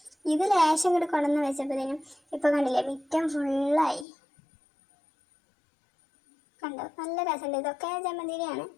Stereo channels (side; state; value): right; drops out; at 4.0 s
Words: ഇത് ലേശം കൂടെ കൊണ്ടുവന്ന് വെച്ചപ്പോഴത്തേനും ഇപ്പോൾ കണ്ടില്ലേ, മുറ്റം ഫുള്ളായി. കണ്ടോ, നല്ല രസമുണ്ട്. ഇതൊക്കെ ജമന്തിരിയാണ്,